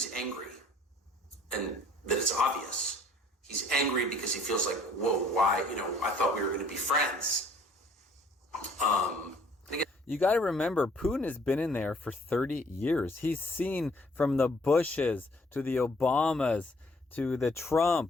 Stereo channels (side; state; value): both; normal; correlation 0.59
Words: angry, and that it's obvious, he's angry because he feels like, whoa, why, I thought we were going to be friends. You got to remember, Putin has been in there for 30 years. He's seen from the Bushes to the Obamas to the